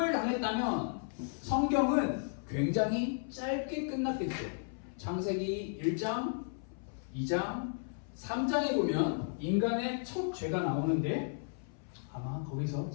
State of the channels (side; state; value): right; silent; 55 dB below the other